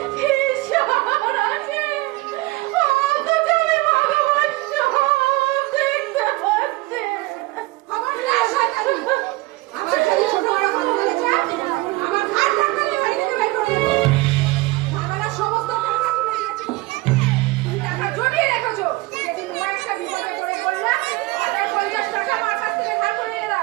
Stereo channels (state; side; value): quieter; left; 21.1 dB